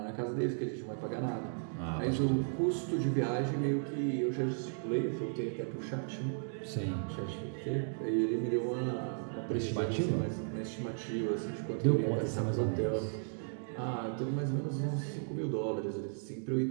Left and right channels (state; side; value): silent; left; digital silence